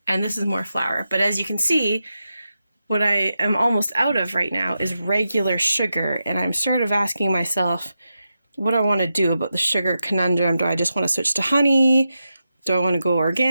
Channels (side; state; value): both; inverted; correlation -0.89